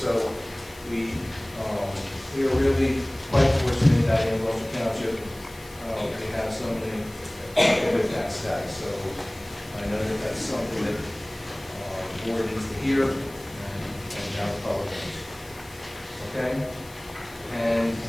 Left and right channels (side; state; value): left; noise; hiss, 22 dB below the sound